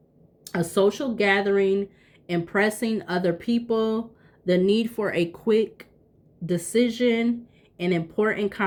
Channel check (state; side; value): identical; both; correlation 1.00